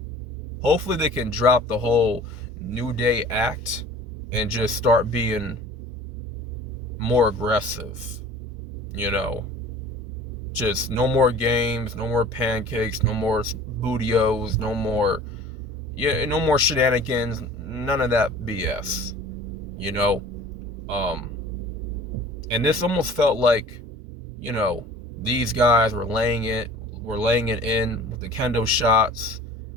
Hopefully they can drop the whole New Day act and just start being more aggressive. Just no more games, no more pancakes, no more bootios, no more shenanigans, none of that BS. And this almost felt like, these guys were laying it in with the kendo shots,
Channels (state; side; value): normal; both; correlation 0.44